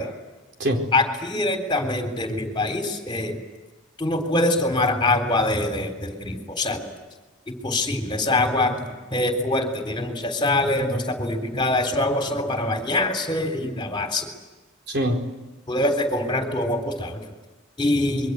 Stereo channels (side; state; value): both; normal; correlation 0.32